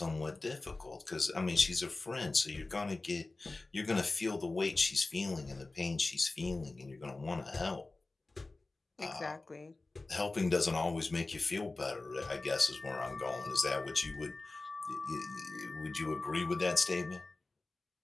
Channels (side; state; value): right; quieter; 3.3 dB